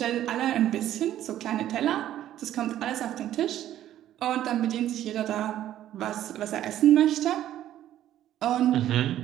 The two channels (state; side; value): quieter; left; 12.3 dB